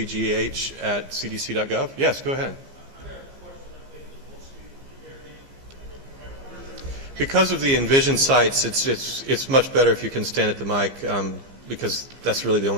Yes, go ahead. Because of the Envision sites, it's much better if you can stand at the mic, because that's really the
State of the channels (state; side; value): late; left; 17 ms